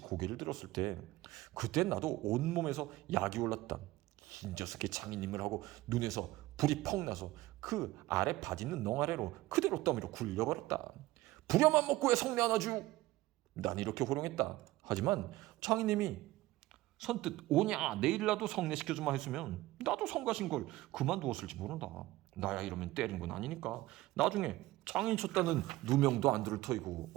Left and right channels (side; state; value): left; quieter; 17.8 dB